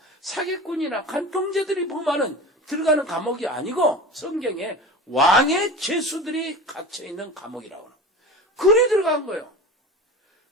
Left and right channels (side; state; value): both; normal; correlation 0.32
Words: 사기꾼이나 간통죄들이 보면은 들어가는 감옥이 아니고 성경에 왕의 죄수들이 갇혀있는 감옥이라고 하는. 그리 들어간 거예요.